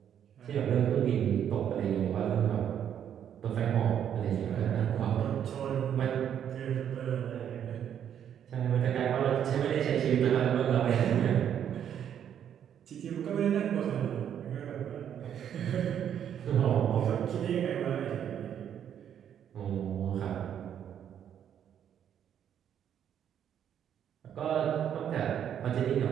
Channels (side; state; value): left; quieter; 9.3 dB